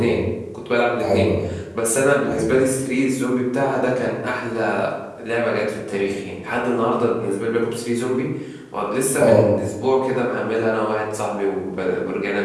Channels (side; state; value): both; identical; correlation 1.00